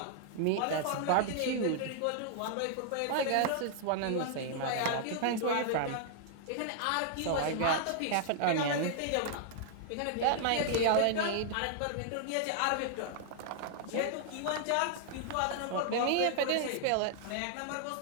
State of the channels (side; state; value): both; different; correlation 0.00